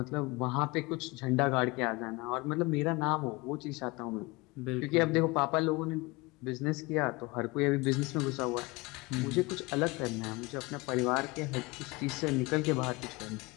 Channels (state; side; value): quieter; right; 24.6 dB